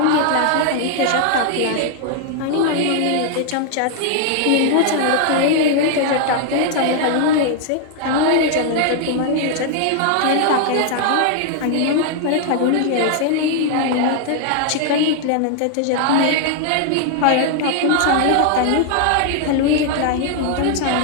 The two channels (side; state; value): both; different; correlation 0.00